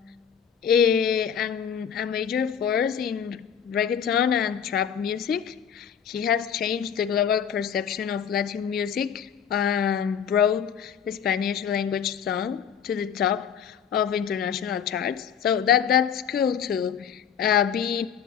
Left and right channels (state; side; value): quieter; right; 8.0 dB